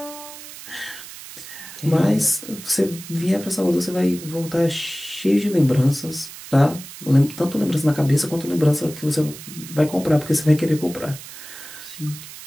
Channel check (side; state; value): right; noise; hiss, 14 dB below the sound